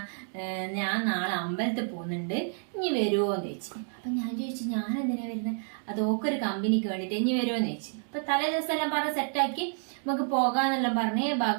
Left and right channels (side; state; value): left; silent; 58 dB below the other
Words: ഞാൻ നാളെ അമ്പലത്തിൽ പോകുന്നുണ്ട്, ഇനി വരുമോന്ന് ചോദിച്ചു. അപ്പൊ ഞാൻ ചോദിച്ചു ഞാൻ എന്തിനാ വരുന്നത്, അത് ഓക്കൊരു കമ്പനിക്ക് വേണ്ടിട്ട് ഇനി വരുമോന്ന് ചോദിച്ചു. അപ്പൊ തലേ ദിവസം എല്ലാം പറഞ്ഞ് സെറ്റാക്കി നമുക്ക് പോകാന്നെല്ലാം പറഞ്ഞ്